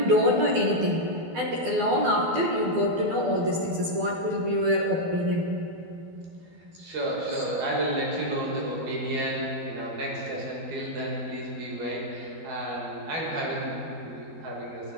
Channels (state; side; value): late; left; 12 ms